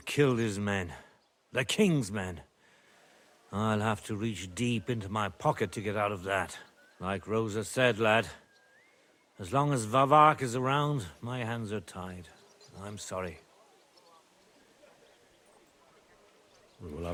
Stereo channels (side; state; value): both; identical; correlation 1.00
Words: killed his men. The king's men. I'll have to reach deep into my pocket to get out of that. Like Rosa said, lad, as long as Vavak is around, my hands are tied. I'm sorry. We'll